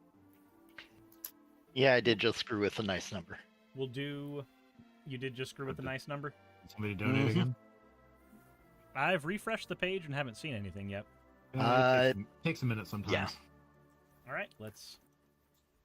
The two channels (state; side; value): identical; both; correlation 1.00